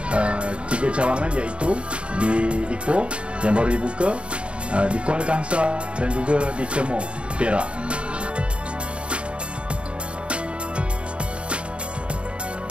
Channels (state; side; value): late; left; 0.058 ms